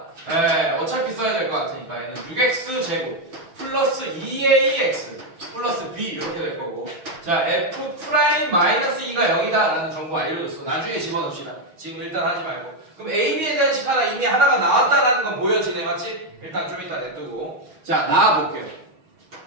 네, 어차피 써야 될 것 같으니까 얘는 6x 제곱 플러스 2ax 플러스 b 이렇게 될 거고, 자, f 프라임 마이너스 2가 0이다 라는 정보 알려줬어. 나중에 집어넣읍시다. 지금 일단 하지 말고. 그럼 a, b에 대한 식 하나 이미 하나가 나왔다라는 건 보여지네, 맞지? 일단 좀 이따 냅두고, 자, 나와볼게요.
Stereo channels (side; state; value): left; late; 6.3 ms